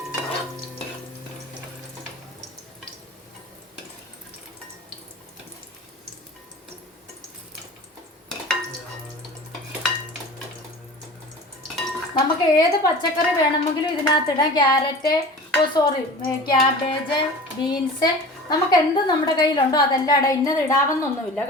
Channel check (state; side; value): normal; both; correlation 0.38